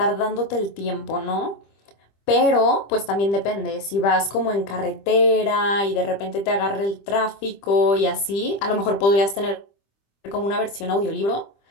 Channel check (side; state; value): right; late; 25 ms